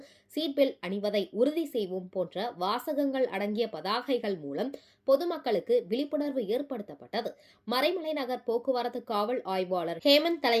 சீட் பெல்ட் அணிவதை உறுதி செய்வோம் போன்ற வாசகங்கள் அடங்கிய பதாகைகள் மூலம் பொதுமக்களுக்கு விழிப்புணர்வு ஏற்படுத்தப்பட்டது. மறைமலை நகர் போக்குவரத்து காவல் ஆய்வாளர் ஹேமந்த்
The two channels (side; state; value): both; identical; correlation 1.00